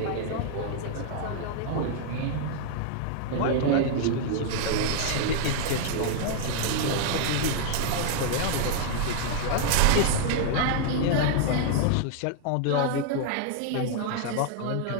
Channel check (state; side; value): different; both; correlation -0.01